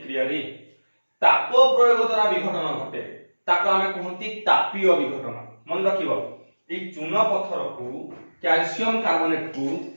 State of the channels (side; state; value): both; inverted; correlation -1.00